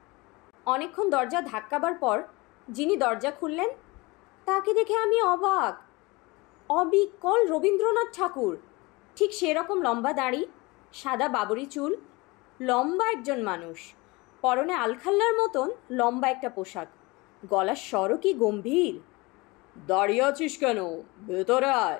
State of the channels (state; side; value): quieter; right; 24.1 dB